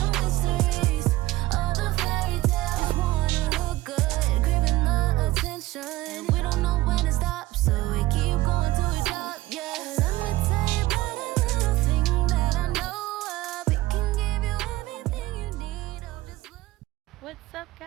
mysteries, all the fairy tales. Just wanna look good, gripping the attention. We don't know when to stop, so we keep going till we drop. Yeah, let me tell you about a little thing that I know of. It can give you everything you need. Oh, just look. What's up,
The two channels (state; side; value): quieter; left; 17.3 dB